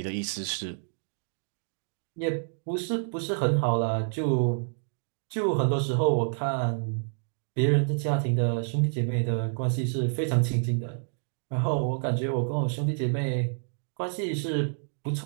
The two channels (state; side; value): silent; left; digital silence